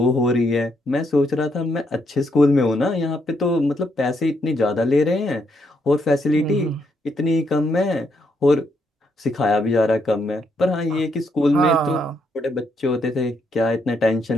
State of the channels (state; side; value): normal; both; correlation 0.76